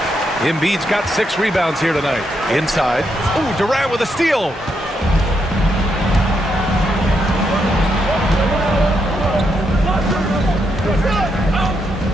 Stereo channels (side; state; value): both; normal; correlation 0.80